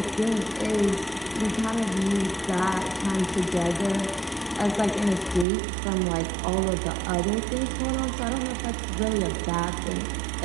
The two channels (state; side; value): drops out; left; at 5.5 s